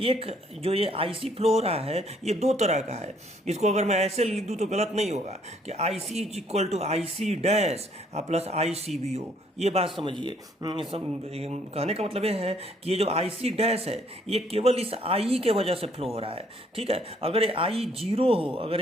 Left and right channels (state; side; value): normal; both; correlation 0.65